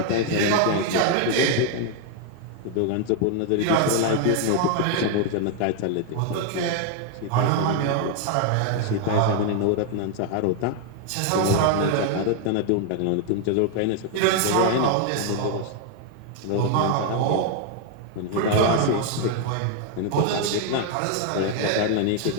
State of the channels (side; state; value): both; different; correlation 0.00